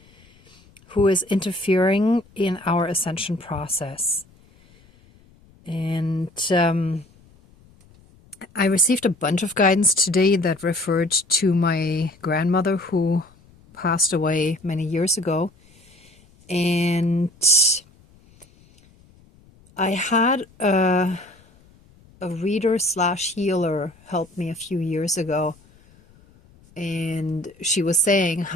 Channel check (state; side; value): noise; left; rumble, 29 dB below the sound